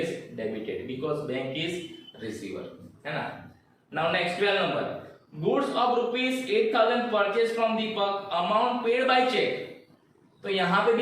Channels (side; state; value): both; identical; correlation 1.00